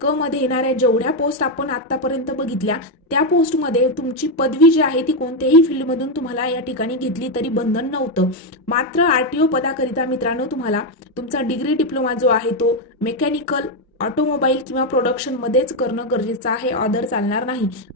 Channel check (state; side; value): normal; both; correlation 0.05